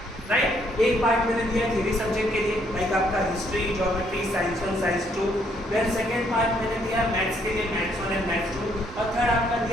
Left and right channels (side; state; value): both; normal; correlation 0.69